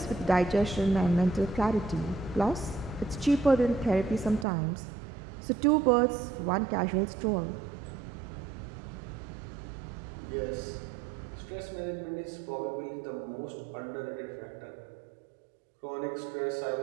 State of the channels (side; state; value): left; drops out; at 4.5 s